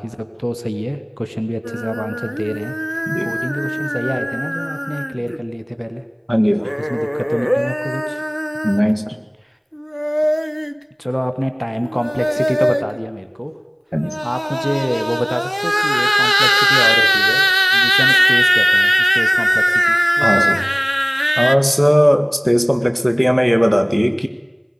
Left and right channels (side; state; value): both; identical; correlation 1.00